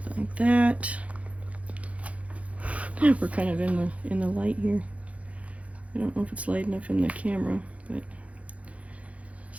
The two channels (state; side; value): late; left; 0.065 ms